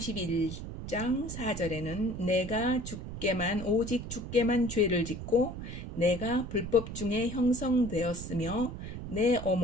4절에는 내가 오직 주께만 죄를 짓고 내가 불법 중에 형성되었으며 내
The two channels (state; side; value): noise; right; rumble, 8 dB below the sound